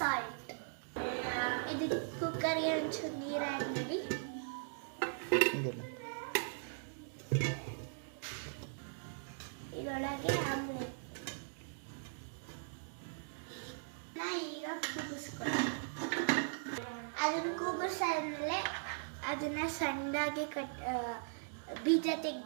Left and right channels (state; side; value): silent; left; digital silence